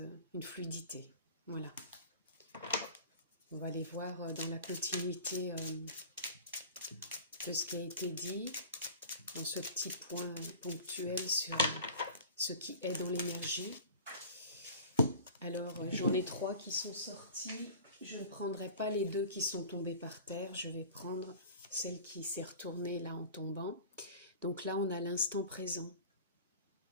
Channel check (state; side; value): inverted; both; correlation -0.41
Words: une fluidité. Voilà. On va aller voir dans la continuité de ce qui a été dit, dans ce petit point ponctuel sur ce qui est dans l'énergie. Alors, j'en ai 3 qui sont sortis. Je ne prendrai pas les 2 qui sont tombés par terre. Je vais prendre celle qui s'est retournée là en tombant. Donc là, on a l'instant présent.